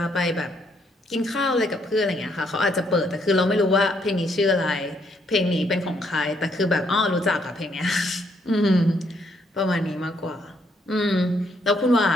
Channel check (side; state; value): both; normal; correlation 0.71